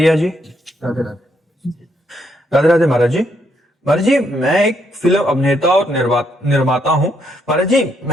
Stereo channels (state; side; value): normal; both; correlation 0.74